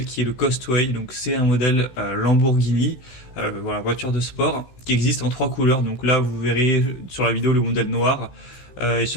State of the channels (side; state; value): right; late; 16 ms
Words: qui est le Costway. Donc c'est un modèle Lamborghini, voilà, voiture de sport qui existe en 3 couleurs. Donc là vous verrez sur la vidéo le modèle noir et